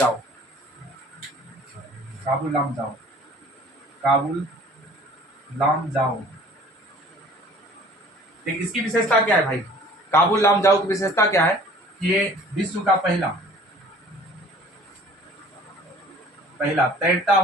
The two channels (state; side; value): normal; both; correlation 0.50